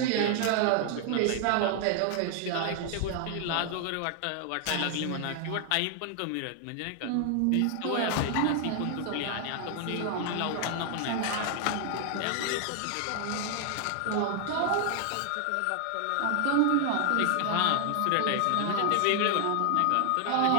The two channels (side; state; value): both; different; correlation 0.00